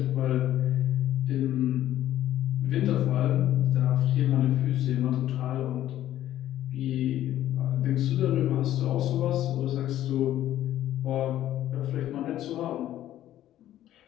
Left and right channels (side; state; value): right; quieter; 12.8 dB